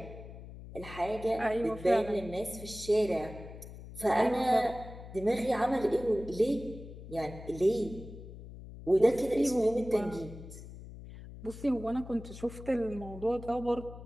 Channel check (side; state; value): left; noise; hum, 14 dB below the sound